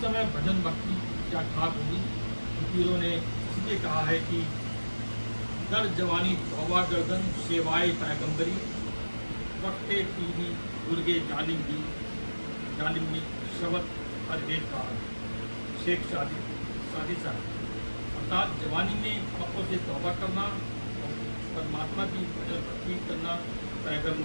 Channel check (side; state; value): both; inverted; correlation -1.00